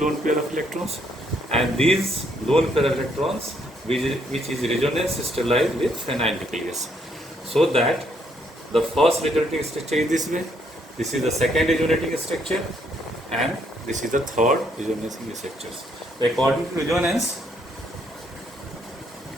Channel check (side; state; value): both; normal; correlation 0.71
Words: pair of electrons, and these lone pair of electrons which is resonance sterilized with phenyl nucleus, so that the first resonating structure is this way, this is the second resonating structure, and this is the third resonating structure. According to resonance,